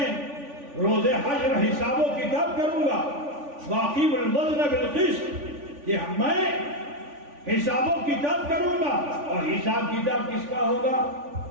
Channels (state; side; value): late; left; 3.5 ms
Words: روز حشر حساب و کتاب کروں گا. واقیم الوزن بالقسط, کہ میں حساب و کتاب کروں گا. اور حساب کتاب کس کا ہوگا؟